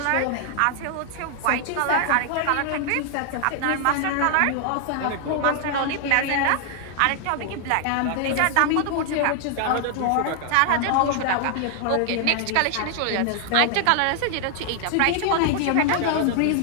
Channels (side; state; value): both; different; correlation 0.00